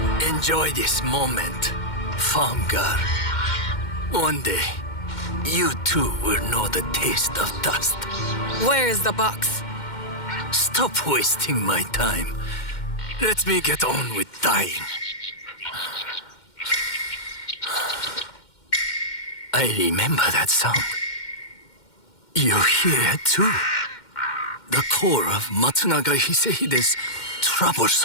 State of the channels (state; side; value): late; right; 2.1 ms